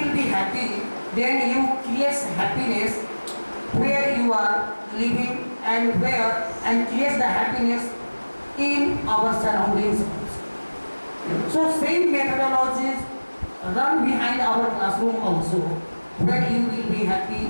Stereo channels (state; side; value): inverted; both; correlation -1.00